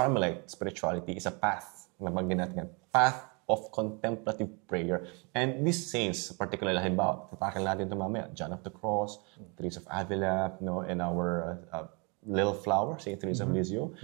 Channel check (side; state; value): left; quieter; 32.3 dB